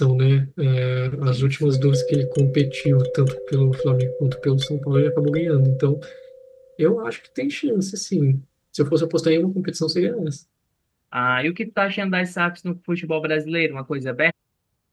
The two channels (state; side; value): identical; both; correlation 1.00